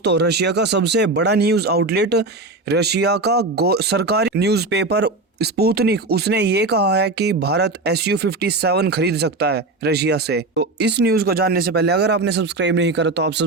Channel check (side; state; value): left; quieter; 3.2 dB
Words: रशिया का सबसे बड़ा न्यूज़ आउटलेट, रशिया का सरकारी न्यूज़पेपर स्पुतनिक, उसने ये कहा है कि भारत Su-57 खरीद सकता है रशिया से। तो इस न्यूज़ को जानने से पहले अगर आपने सब्सक्राइब नहीं करा तो आप